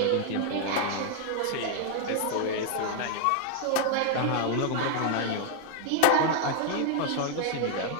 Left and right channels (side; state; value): both; different; correlation 0.00